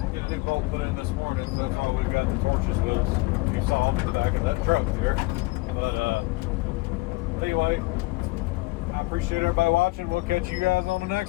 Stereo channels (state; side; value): quieter; right; 22.9 dB